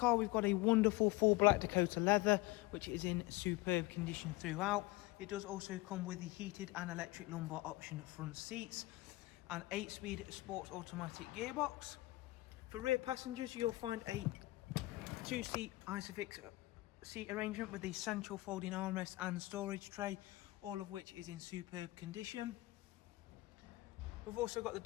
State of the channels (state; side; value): quieter; right; 20.3 dB